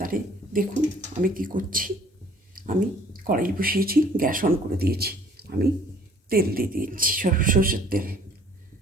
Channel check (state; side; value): normal; both; correlation 0.56